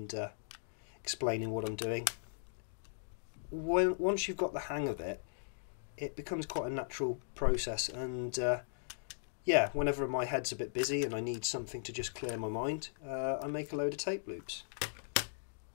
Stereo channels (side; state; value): right; silent; digital silence